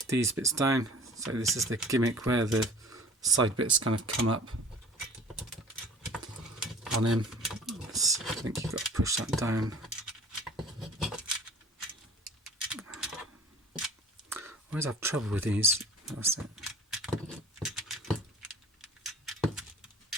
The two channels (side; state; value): both; normal; correlation 0.46